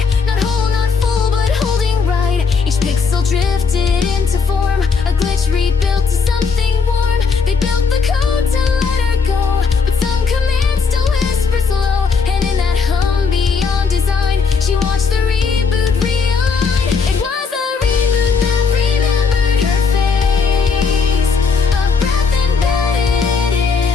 not whole, not full, but holding right. Each pixel drifted into form, a glitch rebuilt to something warm. They built the code to let her go, but some commands still whisper slow. And in that hum beyond design, she watched the reboot realign. It was a reboot that remembered her face, a breath embedded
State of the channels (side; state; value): right; quieter; 5.2 dB